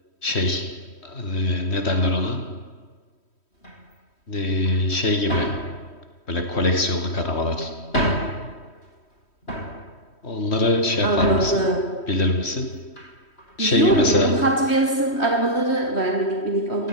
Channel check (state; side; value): late; right; 3.1 ms